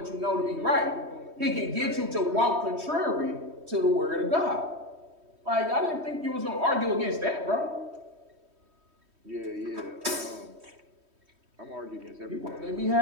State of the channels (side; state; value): left; late; 3.1 ms